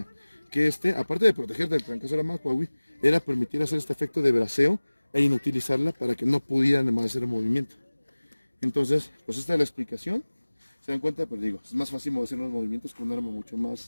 que aparte de proteger del trancazo de la macuahui, era permitir hacer este efecto de braceo e inutilizarla para que no pudieran más hacer el movimiento. Entonces, pues esta es la explicación. Se dan cuenta, pero digo, es más fácil hacer los movimientos con un arma mucho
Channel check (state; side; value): inverted; both; correlation -1.00